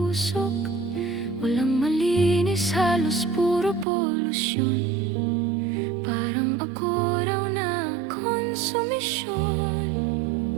Walang malinis, halos puro polusyon. Parang ako raw na konsumisyon.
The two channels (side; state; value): left; drops out; at 3.9 s